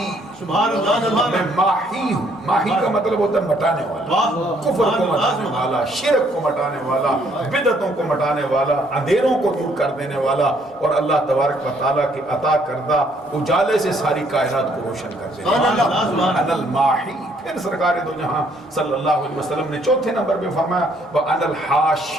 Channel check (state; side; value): normal; both; correlation 0.66